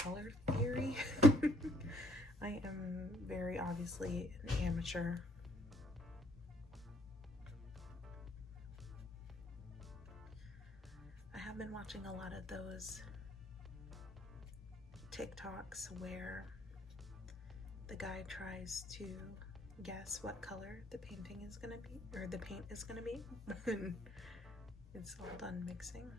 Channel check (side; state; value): both; normal; correlation 0.64